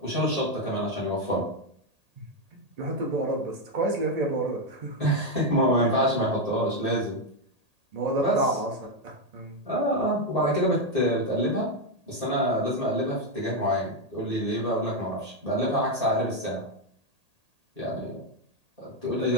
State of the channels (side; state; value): left; late; 1.8 ms